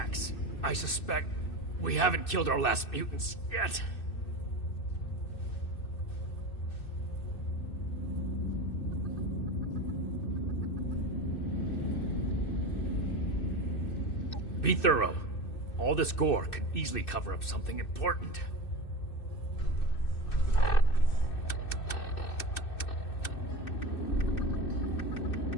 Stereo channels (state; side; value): late; right; 2.6 ms